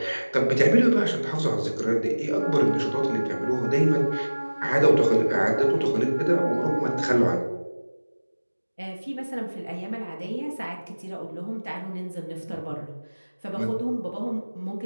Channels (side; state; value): both; inverted; correlation -1.00